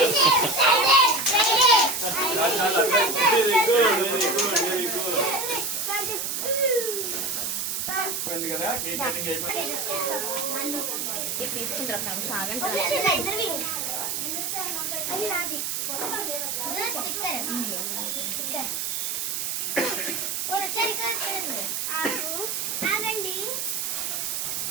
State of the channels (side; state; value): right; noise; hiss, 2 dB below the sound